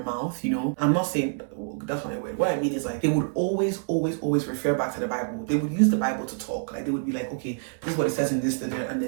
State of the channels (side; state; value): left; silent; 60 dB below the other